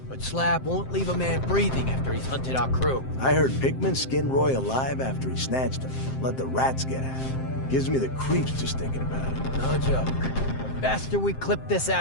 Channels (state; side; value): late; right; 7.6 ms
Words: but Slab won't leave a man breathing after he's hunted our crew. I heard Pikmin skinned Roy alive after he snatched him. Let the rats get at him. Gives me the creeps just thinking about it. No joke. The faster we clip this